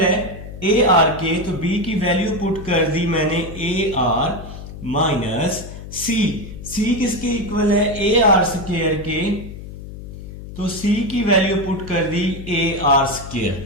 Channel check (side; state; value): left; noise; hum, 12 dB below the sound